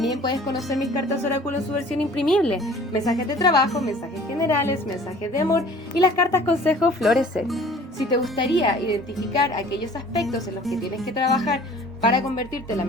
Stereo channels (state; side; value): normal; both; correlation 0.49